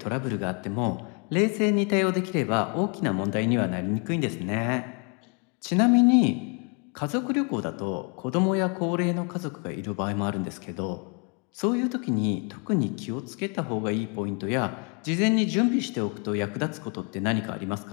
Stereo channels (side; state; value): right; quieter; 36.6 dB